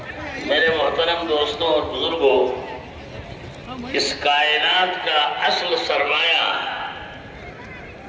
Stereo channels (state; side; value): identical; both; correlation 1.00